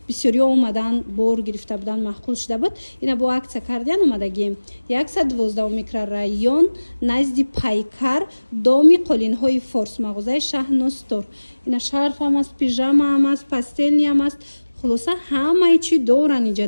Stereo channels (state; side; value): inverted; both; correlation -1.00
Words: бисёриё омадан бор гирифта будан маҳқул шуда буд ина бо акция кардиан омадагием 112 микрорайон назди пайкар доми қолинҳои форс мағозаи шаҳностор ина шарфам аст пижама ам аст пастелниам аст хулоса ҳамаи чӣ доран